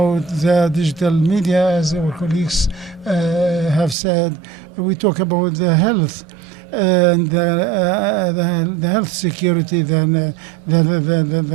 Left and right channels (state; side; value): drops out; left; at 4.0 s